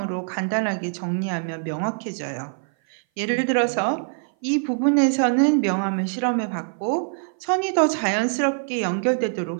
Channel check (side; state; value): left; silent; 57 dB below the other